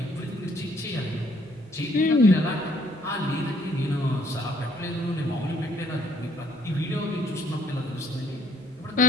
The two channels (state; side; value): normal; both; correlation 0.65